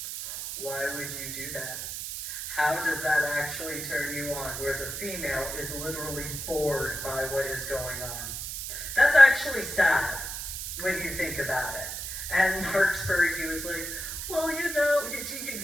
Why would you do that? How does that actually turn you on, where the female is literally bored by what is going on? That's actually sad when you think about it. And Marksburg, he was like, well, you know,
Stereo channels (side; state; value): right; noise; hiss, 6 dB below the sound